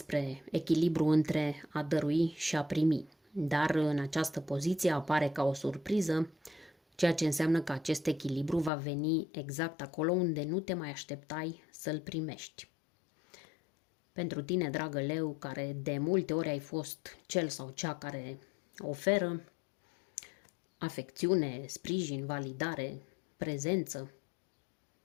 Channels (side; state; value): right; drops out; at 8.7 s